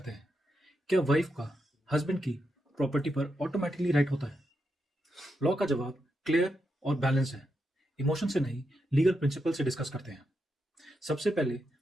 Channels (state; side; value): normal; both; correlation 0.84